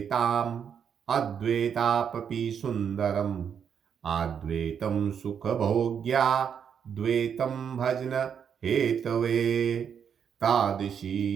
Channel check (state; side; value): quieter; left; 7.6 dB